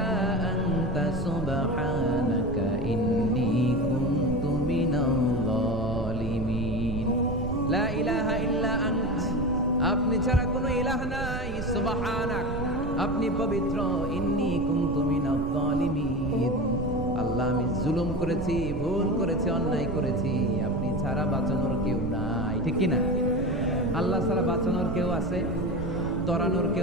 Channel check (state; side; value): noise; right; rumble, 6 dB below the sound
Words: আনতা সুবহানাকা ইন্নী কুনতু মিনাজ জালিমিন। লা ইলাহা ইল্লা আন্ত, আপনি ছাড়া কোনো ইলাহ নাই, সুবহানাক, আপনি পবিত্র, ইন্নী কুনতু মিনাজ জালিমিন। আল্লাহ আমি জুলুম করেছি, ভুল করেছি, অন্যায় করেছি, আপনি ছাড়া বাঁচানোর কেউ নাই। ঠিক কি না? আল্লাহ ছাড়া বাঁচানোর কেউ আছে? তরানোর